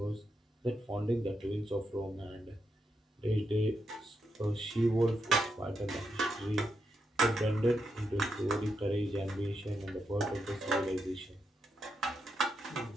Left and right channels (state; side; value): normal; both; correlation 0.83